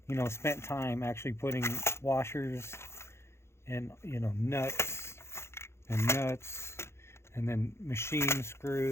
spent time actually putting washers and nuts and then machine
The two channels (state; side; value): late; right; 0.13 ms